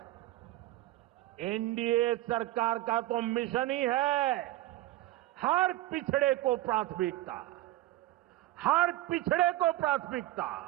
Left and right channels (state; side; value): quieter; left; 16.5 dB